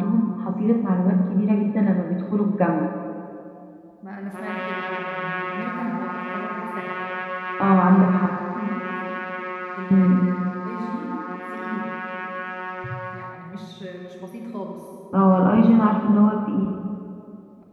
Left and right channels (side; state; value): both; identical; correlation 1.00